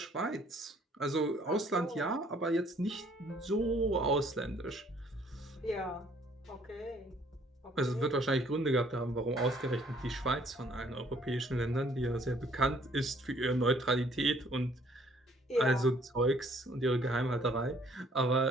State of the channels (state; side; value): normal; both; correlation 0.61